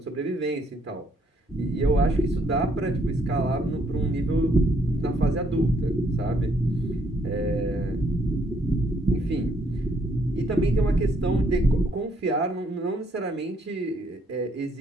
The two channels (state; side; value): normal; both; correlation 0.69